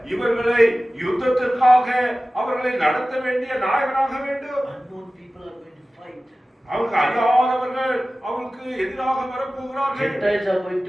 இவர்களை யுத்தத்திற்காக அவர்களை நடத்த வேண்டிய நாயகனாக வேண்டும். Unknown people are going to fight. அவருக்கு அறியாதவர்கள் அவருக்கு எதிராக வரப்போகிறார்கள். Gentiles are going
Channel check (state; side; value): normal; both; correlation 0.96